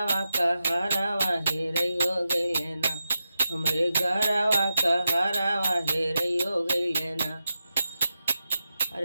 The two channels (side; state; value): both; inverted; correlation -0.90